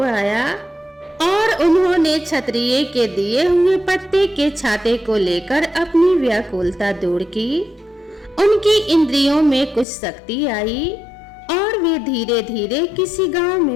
आया और उन्होंने क्षत्रिय के दिए हुए पत्ते के छाते को लेकर अपनी व्याकुलता दूर की। उनकी इंद्रियों में कुछ शक्ति आई और वे धीरे धीरे किसी गांव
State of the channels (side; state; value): right; drops out; at 9.9 s